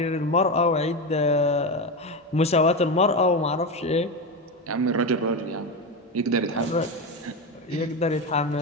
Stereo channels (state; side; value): normal; both; correlation 0.16